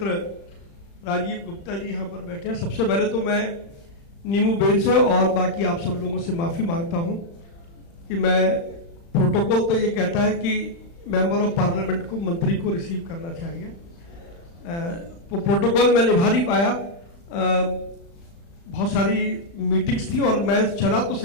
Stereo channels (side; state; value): right; late; 35 ms